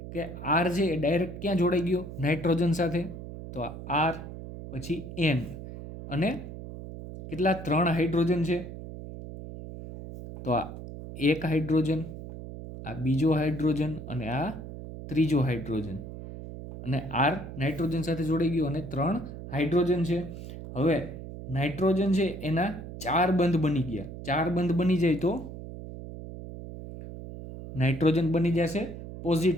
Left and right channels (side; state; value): right; noise; hum, 11 dB below the sound